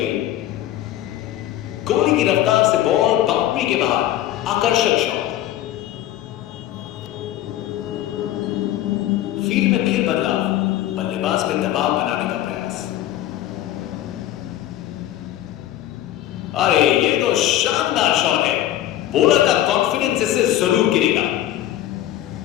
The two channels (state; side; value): quieter; right; 13.1 dB